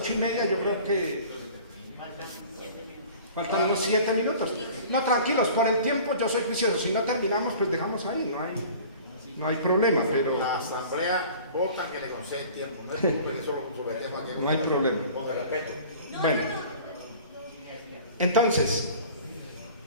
yo creo que faltan unos 7 minutos. No, tranquilos, por el tiempo yo soy juicioso. Si no terminamos, pues dejamos ahí, no hay problema, pero... La asamblea vota que le concede el tiempo, no es como que eso lo sometemos aquí. No hay problema. Con el respeto. Bueno, entonces,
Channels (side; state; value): both; inverted; correlation -0.45